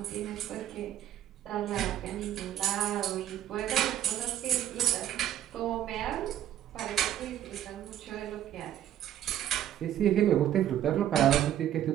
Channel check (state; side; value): quieter; left; 11.6 dB